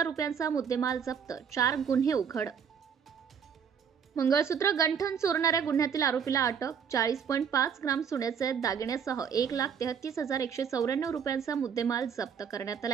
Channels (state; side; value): quieter; left; 7.3 dB